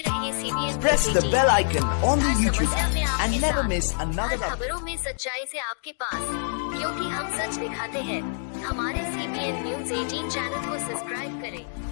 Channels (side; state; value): right; silent; digital silence